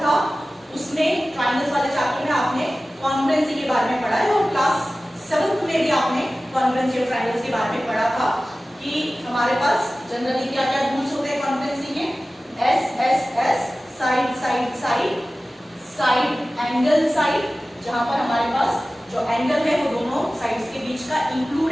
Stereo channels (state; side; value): normal; both; correlation 0.96